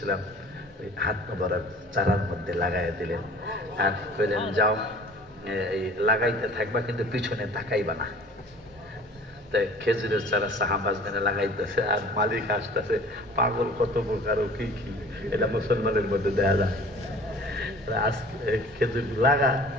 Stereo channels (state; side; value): normal; both; correlation 0.47